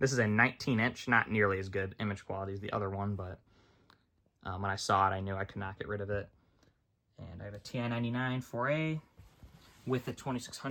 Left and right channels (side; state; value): both; identical; correlation 1.00